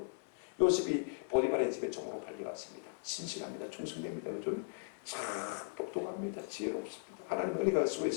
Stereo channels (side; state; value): right; silent; 53 dB below the other